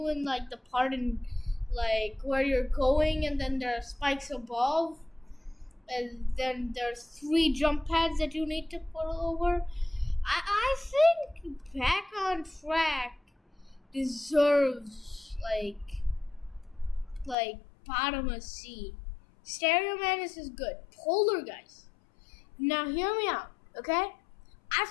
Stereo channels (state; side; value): drops out; right; at 17.4 s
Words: in like the part in like where you're going, and then there are spikes above. And then there's 3 jump pads that you need to put over. I think Back on Track deserves like bottom of C. Stereo Madness is good. Polar Guys. Now hear me out, okay? I